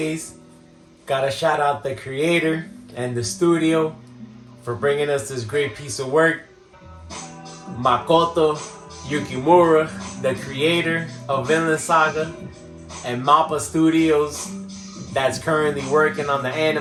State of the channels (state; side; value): identical; both; correlation 1.00